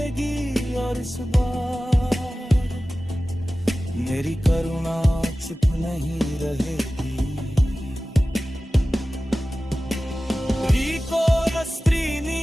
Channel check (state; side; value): normal; both; correlation 0.96